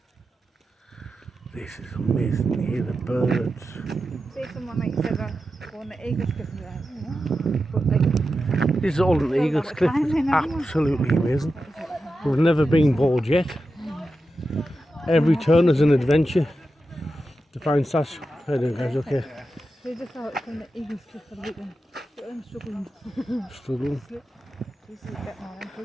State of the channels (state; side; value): normal; both; correlation 0.90